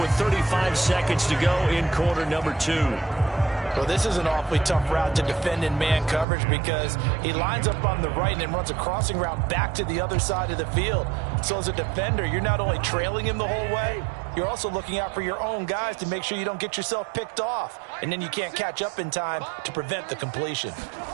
35 seconds to go in quarter number 2. Well, this is an awfully tough route to defend in man coverage because he lines up on the right and then runs a crossing route back to the other side of the field. So as a defender, you're not only trailing him the whole way, you're also looking out for your own guys to make sure you don't get yourself picked off. And then you can't catch up in time to prevent the completion.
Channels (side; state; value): left; drops out; at 6.2 s